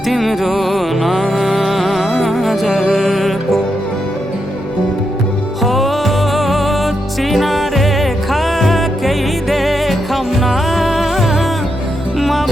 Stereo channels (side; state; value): both; normal; correlation 0.83